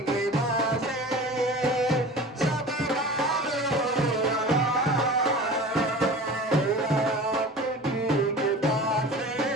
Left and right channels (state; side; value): normal; both; correlation 0.37